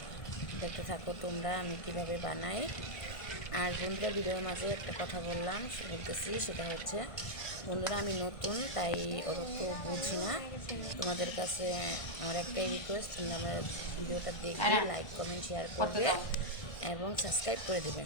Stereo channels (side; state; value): right; late; 1.5 ms